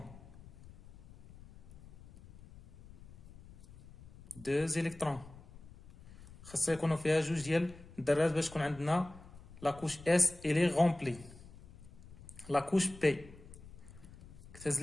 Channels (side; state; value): left; noise; rumble, 19 dB below the sound